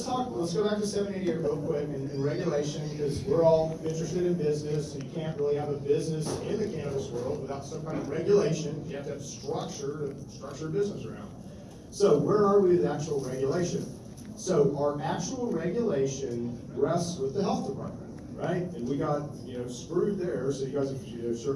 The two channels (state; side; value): identical; both; correlation 1.00